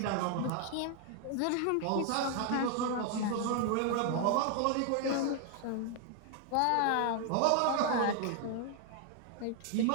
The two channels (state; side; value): different; both; correlation 0.00